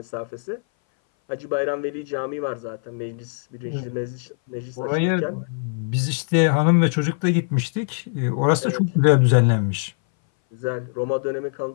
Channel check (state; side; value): silent; right; 59 dB below the other